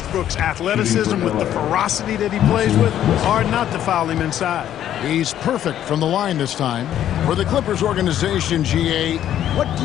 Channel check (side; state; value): right; quieter; 11.1 dB